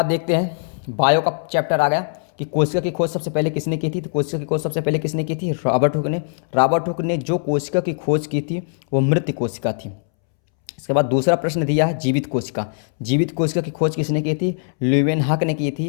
देखते हैं, बायो का चैप्टर आ गया कि कोशिका की खोज सबसे पहले किसने की थी, तो कोशिका की खोज सबसे पहले किसने की थी, रॉबर्ट हुक ने। रॉबर्ट हुक ने जो कोशिका की खोज की थी वो मृत कोशिका थी। इसके बाद दूसरा प्रश्न दिया है जीवित कोशिका। जीवित कोशिका की खोज किसने की थी, ल्यूवेनहॉक ने की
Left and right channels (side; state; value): right; silent; 65 dB below the other